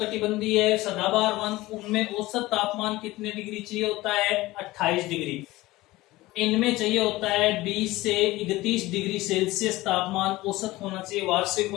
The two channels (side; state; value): right; quieter; 18.8 dB